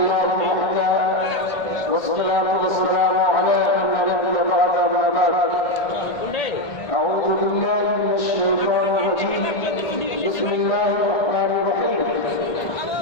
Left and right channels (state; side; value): late; right; 1.4 ms